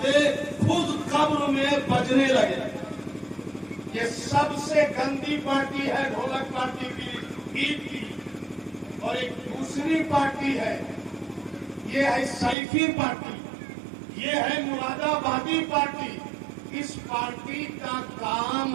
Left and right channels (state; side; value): drops out; left; at 12.6 s